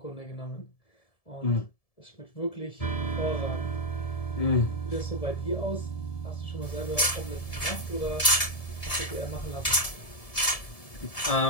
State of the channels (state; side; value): late; right; 1.7 ms